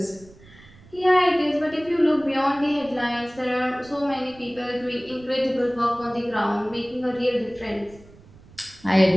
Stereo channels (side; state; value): right; noise; rumble, 23 dB below the sound